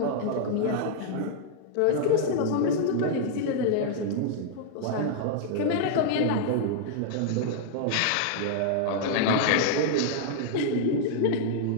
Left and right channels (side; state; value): both; different; correlation -0.01